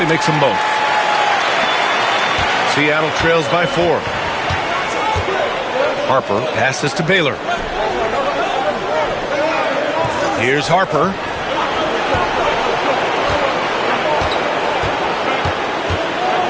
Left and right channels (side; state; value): both; identical; correlation 1.00